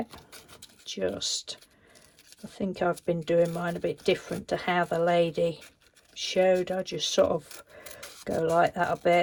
Just, I think I've been doing mine a bit different to how the lady showed. I just sort of go like that a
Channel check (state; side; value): identical; both; correlation 1.00